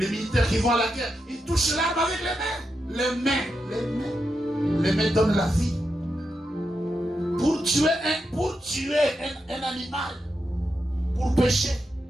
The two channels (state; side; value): normal; both; correlation 0.86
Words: militaires qui vont à la guerre, ils touchent l'arme avec les mains. Les mains. Les mains donnent la vie. Pour tuer un animal, pour pécher.